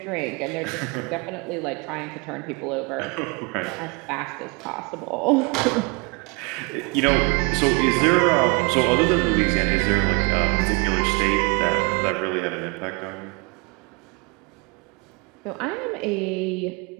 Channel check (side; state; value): left; quieter; 30.4 dB